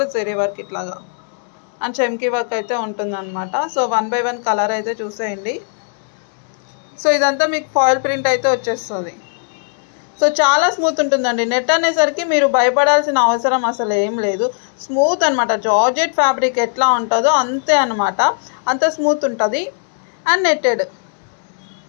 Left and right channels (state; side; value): silent; right; 64 dB below the other